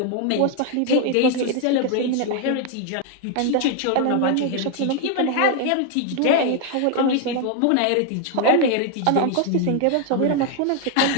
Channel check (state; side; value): different; both; correlation 0.01